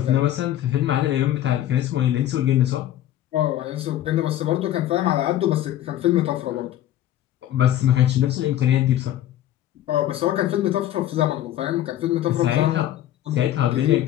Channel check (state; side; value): quieter; right; 12.5 dB